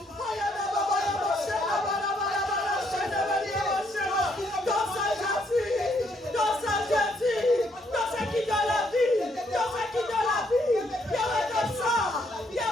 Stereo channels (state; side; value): normal; both; correlation 0.71